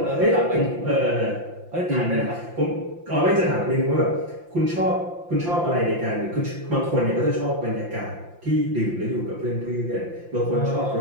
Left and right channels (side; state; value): left; late; 5.8 ms